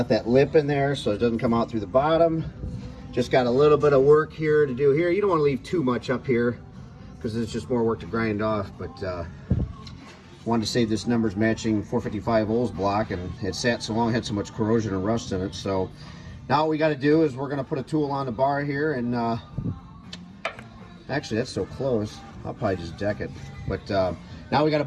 that lip in there so it doesn't come out through the bottom. Just got a little bit of work here to do here. You don't want to leave too much up here because it's just more work to grind off, but wanted to save this numbers matching 455 Olds block, and it sat so long, had so much corrosion and rust in it. So now what we got to do is we're going to put a tool on the bar here, and actually that's so close. I'll probably just deck it. But now we got to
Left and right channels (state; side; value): identical; both; correlation 1.00